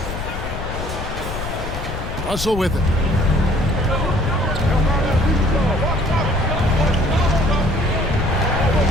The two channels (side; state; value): left; noise; rumble, 6 dB below the sound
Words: Russell with it.